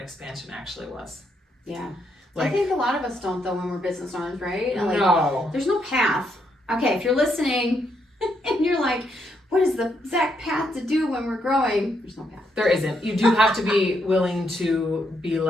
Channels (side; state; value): both; normal; correlation 0.77